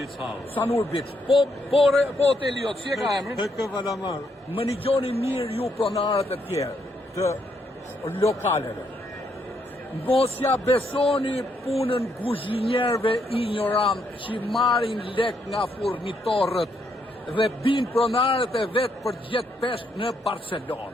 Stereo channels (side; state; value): both; normal; correlation 0.75